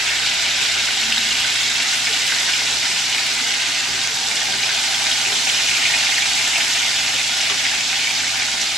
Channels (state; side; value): normal; both; correlation 0.64